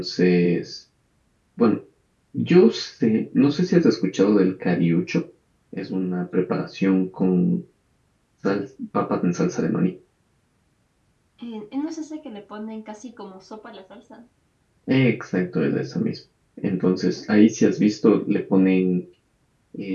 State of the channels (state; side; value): identical; both; correlation 1.00